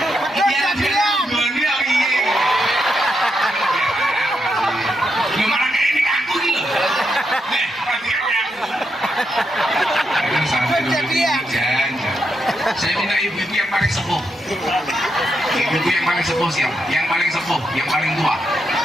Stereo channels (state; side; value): normal; both; correlation 0.82